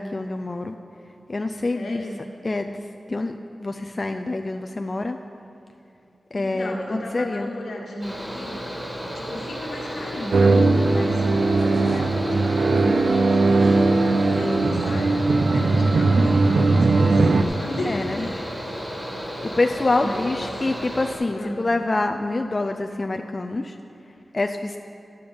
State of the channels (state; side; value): normal; both; correlation 0.94